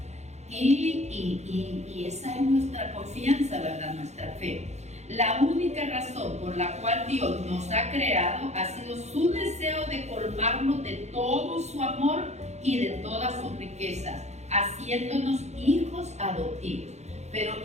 Y esa es nuestra confianza, ¿verdad? Nuestra fe. La única razón por la cual Dios nos ha creado ha sido su deseo de colmarnos de todo su amor y de todas sus riquezas, haciéndonos hijos adoptivos. Pero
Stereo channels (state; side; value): late; left; 0.32 ms